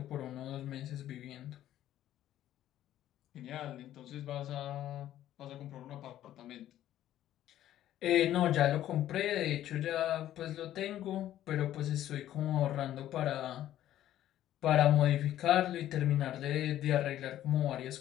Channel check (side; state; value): right; quieter; 12.6 dB